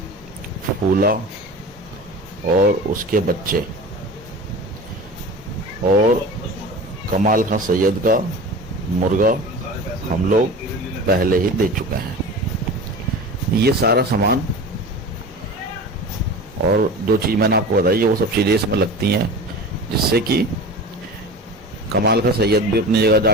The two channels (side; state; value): both; normal; correlation 0.34